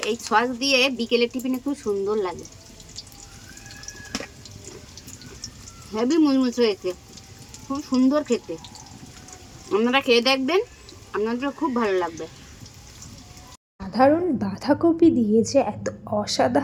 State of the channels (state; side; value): identical; both; correlation 1.00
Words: এই সস দিয়ে বিকেলের টিফিনে খুব সুন্দর লাগে। হেভি মুচমুচ হয়েছে, খুব সুন্দর খেতে। আপনারা খেয়ে দেখবেন, আপনাদের খুব ভালো লাগবে। সাধারণ বাঁধাকপি দিয়ে যে এত